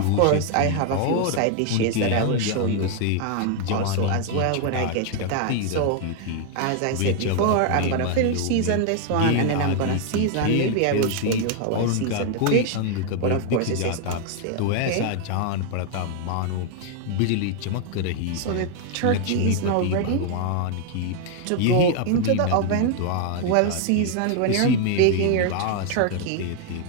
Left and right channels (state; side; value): different; both; correlation 0.00